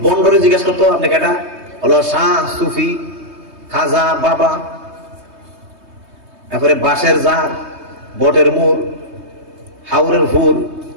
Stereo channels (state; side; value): late; left; 3.2 ms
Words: বন্ডরে জিজ্ঞাসা করতো আপনি কেটা, হলো শাহ, সুফি, খাজা, বাবা, তারপরে বাঁশের জার, বটের মূল, হাওরের ফুল,